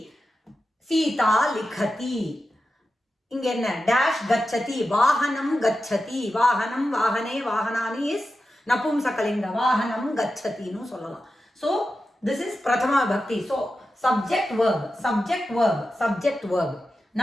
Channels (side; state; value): both; normal; correlation 0.91